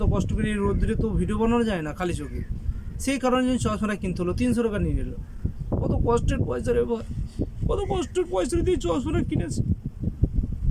কষ্ট করে, এই রোদ্দুরে তো ভিডিও বানানো যায় না খালি চোখে। সেই কারণে চশমাটা কিনতে হলো, 300 টাকা নিয়ে নিল। কত কষ্টের পয়সা রে ভাই, কত কষ্টের পয়সা দিয়ে চশমাটা কিনেছে।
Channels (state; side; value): identical; both; correlation 1.00